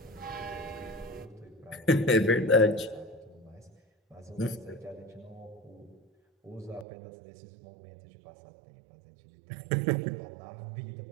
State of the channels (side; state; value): left; drops out; at 6.9 s